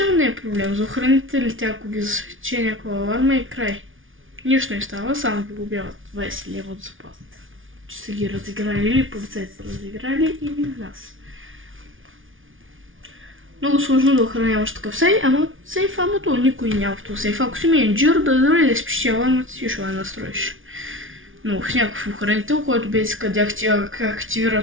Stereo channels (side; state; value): left; late; 0.57 ms